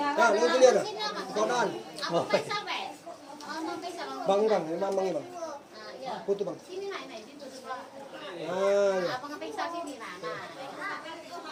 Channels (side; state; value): both; identical; correlation 1.00